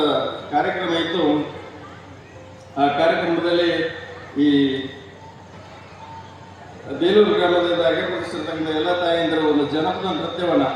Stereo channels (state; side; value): identical; both; correlation 1.00